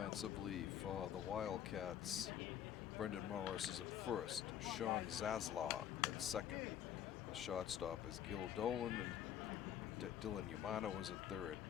for the Wildcats, Brendan Morris is at first, Sean Zaslaw at second. The shortstop is Gil Dolan, and Dylan Yamano is at third.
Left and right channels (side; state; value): right; quieter; 10.1 dB